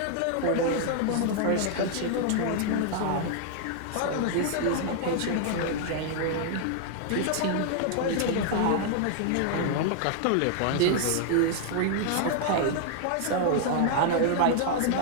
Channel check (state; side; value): different; both; correlation -0.01